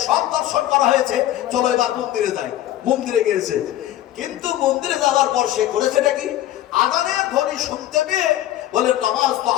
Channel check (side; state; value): right; quieter; 13.4 dB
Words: সব দর্শন করা হয়েছে, চলো এবার মন্দিরে যাই। মন্দিরে গিয়েছে, কিন্তু মন্দিরে যাওয়ার পর সে করেছেটা কি? আযানের ধ্বনি শুনতে পেয়ে বলে নামাজ তো